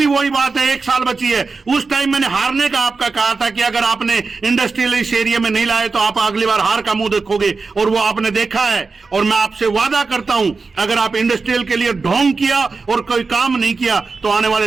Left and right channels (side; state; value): left; quieter; 4.3 dB